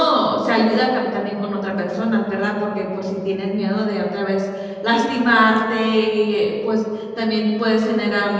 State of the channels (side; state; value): both; identical; correlation 1.00